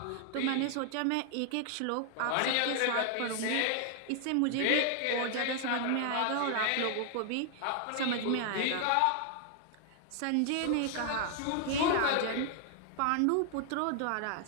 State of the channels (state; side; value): different; both; correlation 0.00